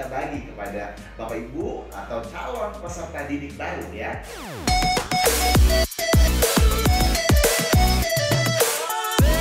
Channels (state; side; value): identical; both; correlation 1.00